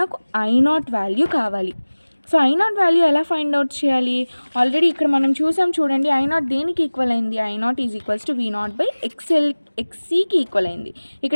నాకు I0 వాల్యూ కావాలి. సో I0 వాల్యూ ఎలా ఫైండ్ అవుట్ చేయాలి, ఆల్రెడీ ఇక్కడ మనం చూసాం చూడండి. I0 దేనికి ఈక్వల్ అయింది, I0 = V0/XCకి ఈక్వల్ అయింది.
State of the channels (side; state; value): both; inverted; correlation -1.00